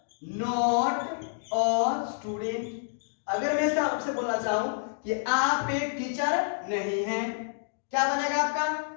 not a student. अगर मैं ऐसा आपसे बोलना चाहूं कि आप एक टीचर नहीं हैं, क्या बनेगा आपका,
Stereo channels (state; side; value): silent; right; digital silence